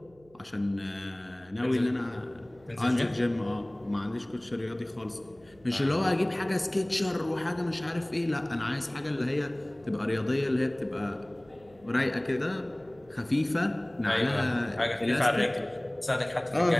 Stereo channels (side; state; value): right; noise; hum, 28 dB below the sound